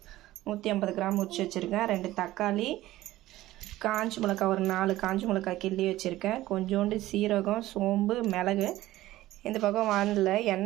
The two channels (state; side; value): quieter; left; 16.0 dB